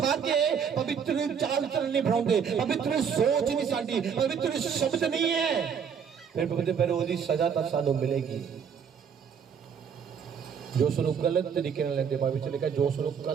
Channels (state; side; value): quieter; left; 7.1 dB